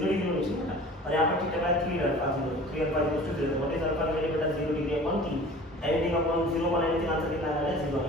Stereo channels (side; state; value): both; normal; correlation 0.43